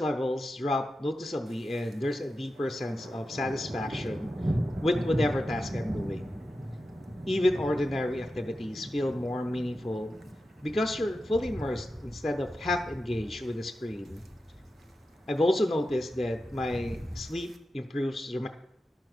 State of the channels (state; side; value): normal; both; correlation 0.91